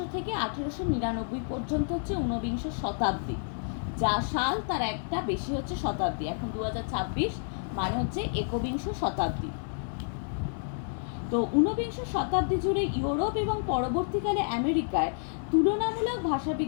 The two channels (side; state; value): right; silent; digital silence